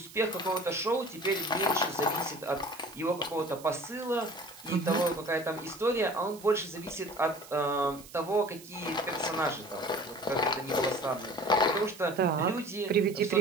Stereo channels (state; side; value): noise; right; hiss, 19 dB below the sound